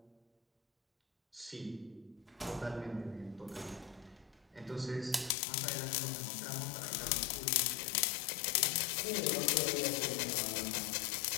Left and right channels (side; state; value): right; drops out; at 5.4 s